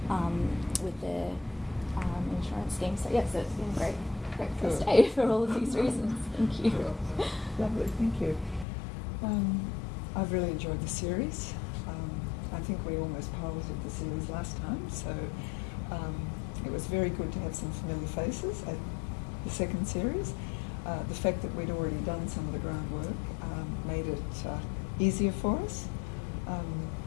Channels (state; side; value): drops out; right; at 8.7 s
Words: with the insurance scheme. So yes, it's been a great first day for all of these reasons. Thank you. Lovely, thank you. I've really enjoyed the series. I think we almost piloted the series last time, so it was very good to have some familiar faces at the second series. The fact that we'd already done some of the groundwork made it easier for us.